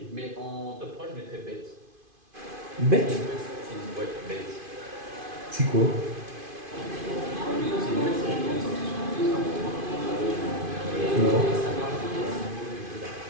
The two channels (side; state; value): left; late; 2.5 ms